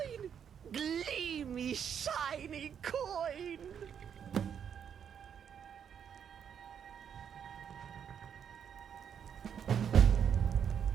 Gleamy, shiny coin.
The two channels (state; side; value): quieter; left; 8.0 dB